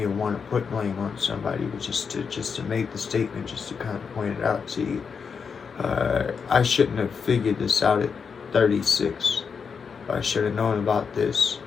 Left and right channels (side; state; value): right; quieter; 6.0 dB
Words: to want to put blame on somebody, but just to make the statement, just to kind of point it out to you. I shouldn't have figured this out at 36. I should have known about this.